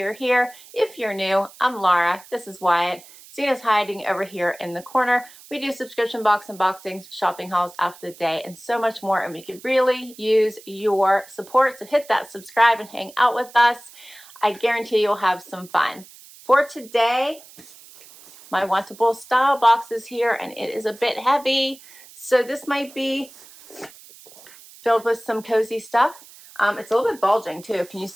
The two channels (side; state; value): right; noise; hiss, 21 dB below the sound